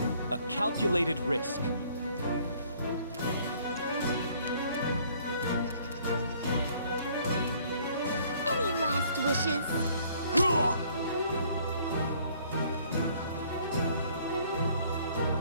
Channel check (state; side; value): inverted; both; correlation -0.60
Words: A calculated risk. Any last wishes?